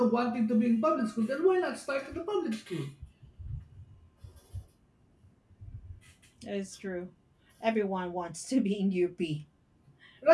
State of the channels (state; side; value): identical; both; correlation 1.00